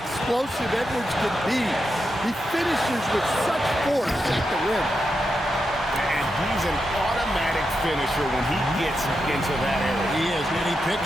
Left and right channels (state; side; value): normal; both; correlation 0.86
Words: Edwards can be. He finishes with such force at the rim. And he's an automatic finisher when he gets into that area. He is, and he